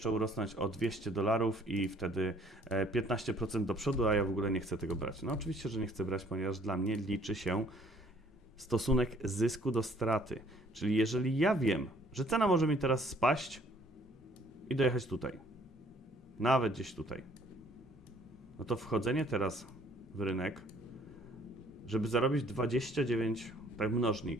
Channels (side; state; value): both; normal; correlation 0.60